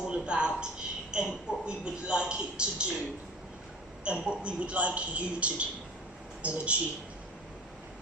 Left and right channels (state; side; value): normal; both; correlation 0.41